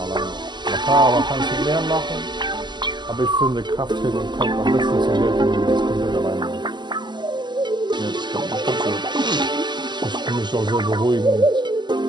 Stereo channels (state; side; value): late; left; 0.21 ms